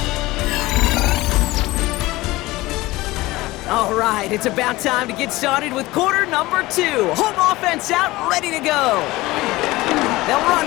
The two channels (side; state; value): right; quieter; 19.4 dB